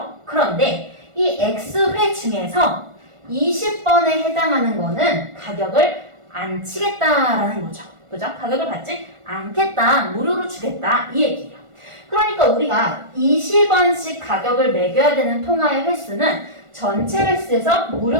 그런데 이 X회 중에서 20번에 해당하는 거는 가격을 안 치겠다라는 거죠. 그죠? 가격을 받지 않겠다, 무료로 주겠다 이 얘기예요. 그러니까 우리가 20원씩 가격을 매겨야 되는 통화의 횟수는 전체 횟수에서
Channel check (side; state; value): left; late; 1.4 ms